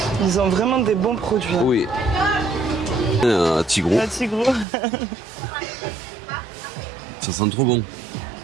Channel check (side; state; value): left; drops out; at 4.7 s